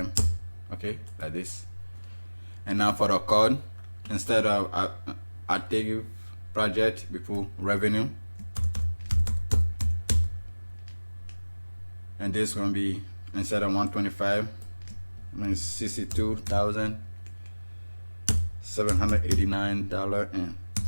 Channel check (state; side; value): inverted; both; correlation -1.00